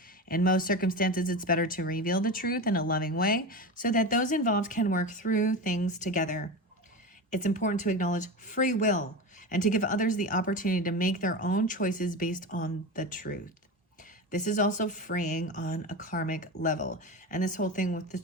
In most circumstances, it's better to reveal the truth in a loving way so that those involved can work through things together. It's important to acknowledge free will and to give others the opportunity to make their own choices based on the truth. This is also freeing on a karmic level. And this whole thing with the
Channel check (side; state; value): both; normal; correlation 0.24